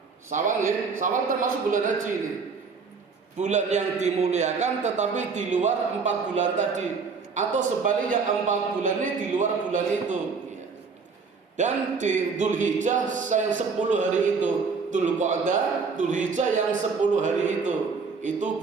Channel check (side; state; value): left; quieter; 5.0 dB